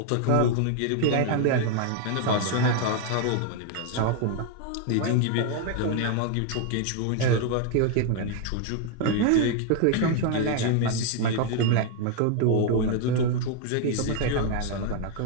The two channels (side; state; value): both; different; correlation 0.00